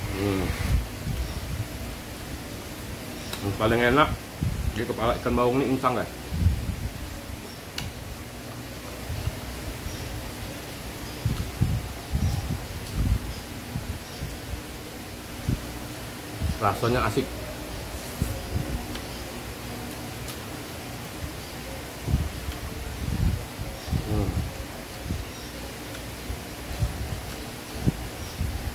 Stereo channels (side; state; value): both; identical; correlation 1.00